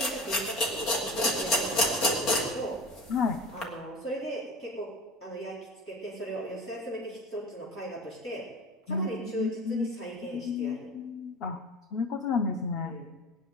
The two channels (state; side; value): normal; both; correlation 0.36